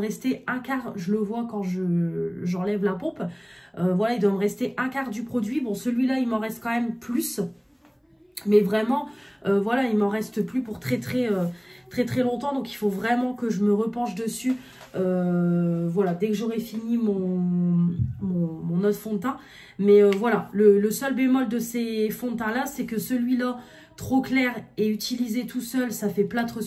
un quart. Je le vois quand j'enlève la pompe. Voilà, il doit me rester un quart du produit. Bon, celui-là, il m'en reste quand même plus. Mais vraiment, voilà, il m'en reste plus pour très longtemps. Donc, il faut vraiment que je me repenche dessus. Voilà, dès que j'aurai fini mon autre fond de teint. Mais voilà, le seul bémol de ces fonds de teint-là, c'est que celui-là, trop clair et utilisé tout seul, ça fait plâtre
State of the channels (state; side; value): identical; both; correlation 1.00